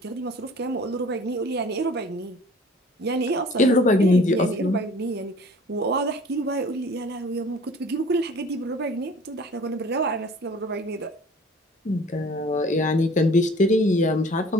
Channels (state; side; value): normal; both; correlation 0.49